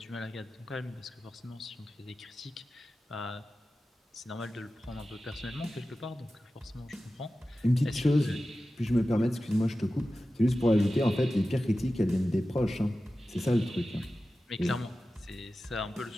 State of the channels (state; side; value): normal; both; correlation 0.94